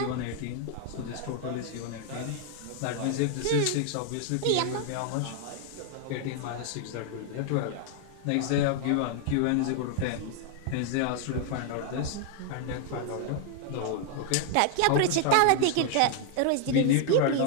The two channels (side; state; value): both; different; correlation 0.00